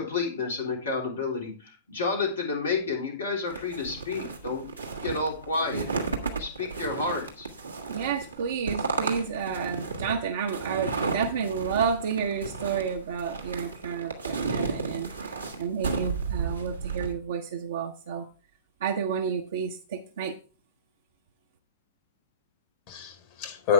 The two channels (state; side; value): inverted; both; correlation -0.44